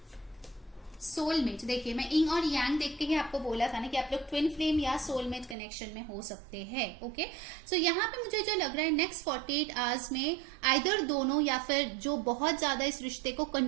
soulmate. देखिए मैं इंग और यांग देख के ही आपको बोला था ना कि आप लोग ट्विन फ्लेम या सोलमेट कनेक्शन में हो सकते हैं। ओके, सो यहाँ पे मुझे जो लग रहा है नेक्स्ट 48 आवर्स में आइदर दोनों या फिर जो बहुत ज्यादा इस रिश्ते को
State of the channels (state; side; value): drops out; left; at 5.6 s